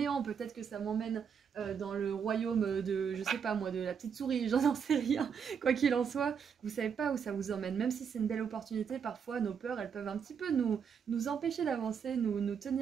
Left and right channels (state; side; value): quieter; left; 7.0 dB